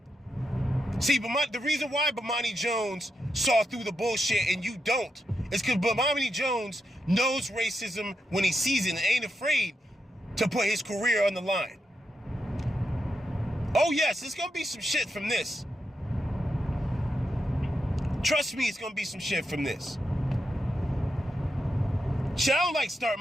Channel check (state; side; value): normal; both; correlation 0.85